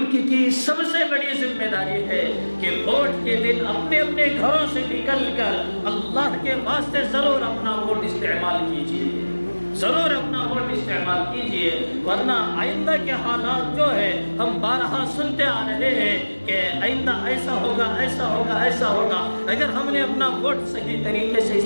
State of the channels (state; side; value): inverted; both; correlation -1.00